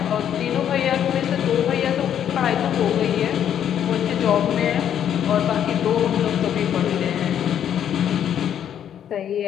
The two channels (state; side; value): quieter; right; 9.6 dB